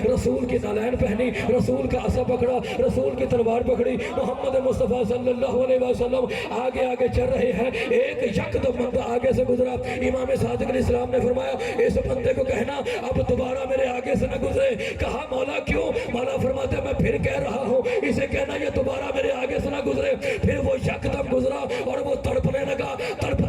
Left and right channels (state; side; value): identical; both; correlation 1.00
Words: رسول کی نالین پہنی، رسول کا عصا پکڑا، رسول کی تلوار پکڑی، محمد مصطفیٰ صلی اللہ علیہ وسلم آگے آگے چل رہے ہیں۔ ایک یکدم بندہ آگے سے گزرا، امام صادق علیہ السلام نے فرمایا اس بندے کو کہنا اب دوبارہ میرے آگے سے نہ گزرے۔ کہا مولا کیوں؟ مولا فرماتے میں پھر کہہ رہا ہوں اسے کہنا یہ دوبارہ میرے آگے سے نہ گزرے۔ پھر وہ یکدم گزرا اور وہ تڑپنے لگا،